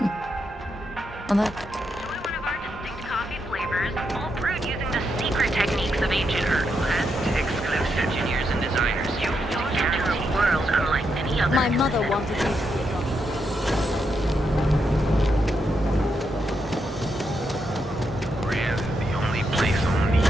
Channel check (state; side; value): normal; both; correlation 0.82